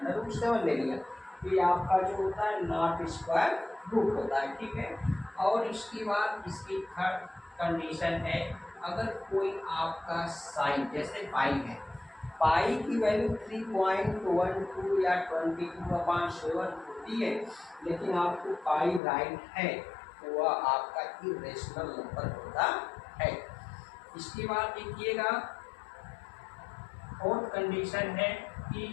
√7 ले लिया, ये आपका जो होता है नॉट स्क्वायर रूट होता है, ठीक है। और इसके बाद इसकी थर्ड कंडीशन है, अगर कोई आपका साइन जैसे पाई है, पाई की वैल्यू 3.12 या 22/7 होती है, लेकिन आपको पाई राइट है तो वह आपका इरेशनल नंबर होता है। इसके बाद देखिएगा फोर्थ कंडीशन है कि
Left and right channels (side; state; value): right; drops out; at 19.0 s